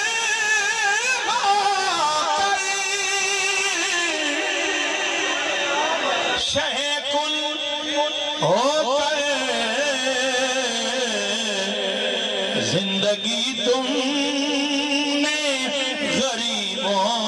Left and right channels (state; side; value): identical; both; correlation 1.00